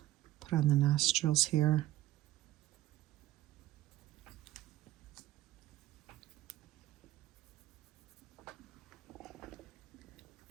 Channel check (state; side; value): quieter; left; 15.1 dB